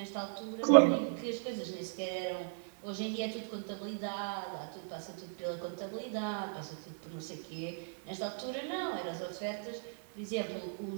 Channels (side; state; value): left; silent; digital silence